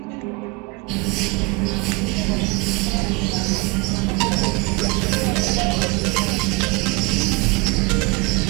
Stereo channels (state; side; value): quieter; left; 25.2 dB